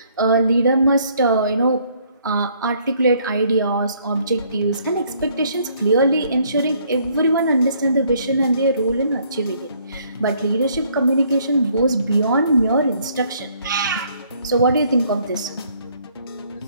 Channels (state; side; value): inverted; both; correlation -0.64